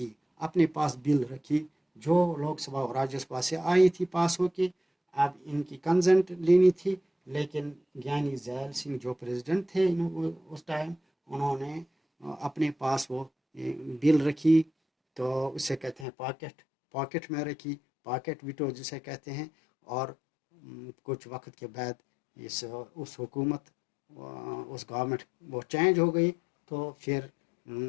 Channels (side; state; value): right; drops out; at 16.1 s